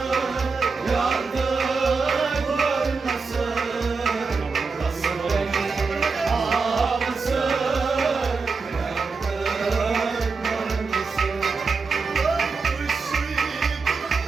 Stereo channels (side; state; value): left; quieter; 4.7 dB